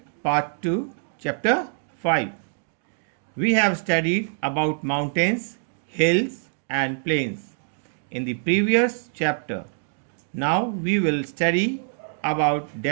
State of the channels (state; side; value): silent; left; 62 dB below the other